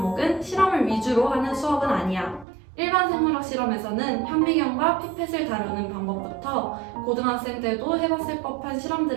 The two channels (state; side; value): drops out; left; at 2.5 s